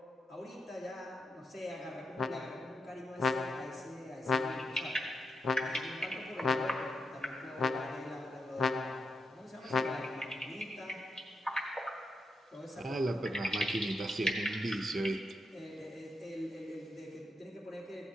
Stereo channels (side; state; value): both; normal; correlation 0.84